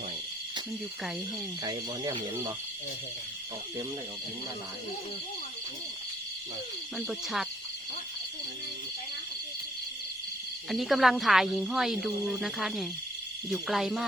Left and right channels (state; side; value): normal; both; correlation 0.66